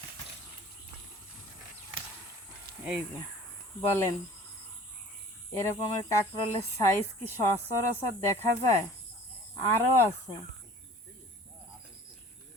এই যে বলেন, এরকমের কাঁকরোলের সাইজ কি সচরাচর দেখা যায়? আরও আছে।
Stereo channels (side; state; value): both; normal; correlation 0.47